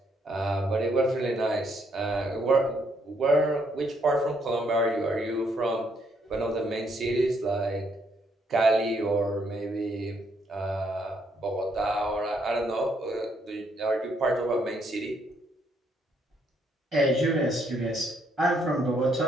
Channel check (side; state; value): both; normal; correlation 0.72